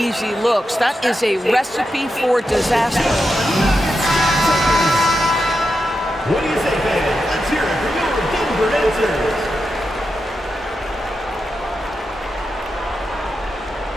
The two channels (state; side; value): normal; both; correlation 0.88